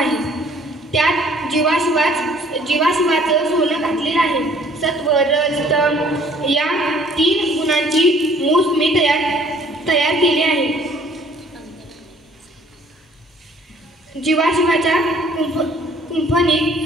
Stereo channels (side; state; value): both; normal; correlation 0.57